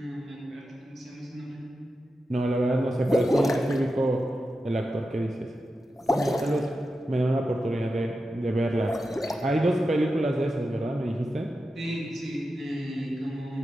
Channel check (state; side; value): normal; both; correlation 0.90